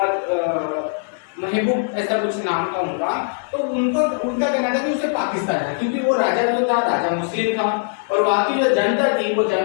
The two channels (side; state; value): right; silent; digital silence